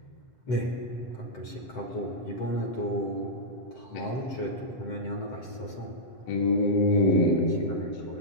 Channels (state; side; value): late; right; 7.8 ms